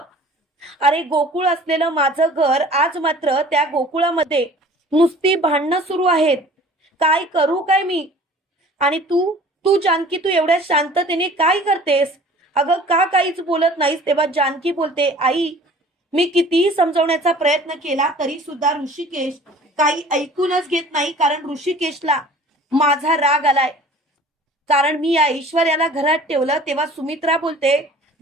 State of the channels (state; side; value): normal; both; correlation 0.47